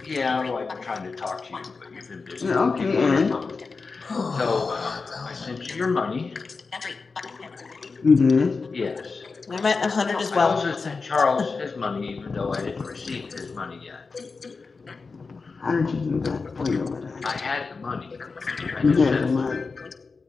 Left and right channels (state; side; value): quieter; right; 4.4 dB